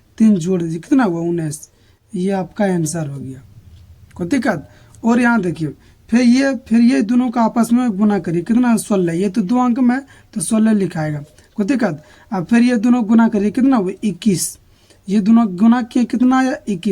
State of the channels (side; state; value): both; identical; correlation 1.00